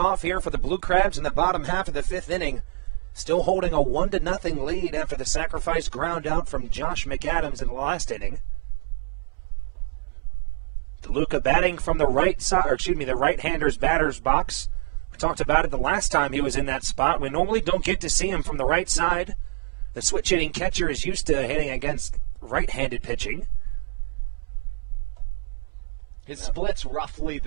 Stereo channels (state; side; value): silent; left; 58 dB below the other